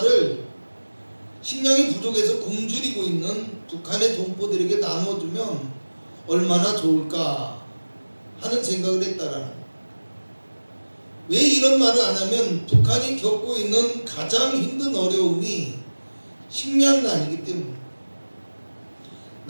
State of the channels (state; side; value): inverted; both; correlation -1.00